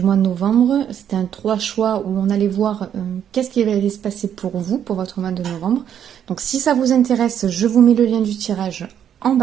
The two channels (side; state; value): left; quieter; 9.3 dB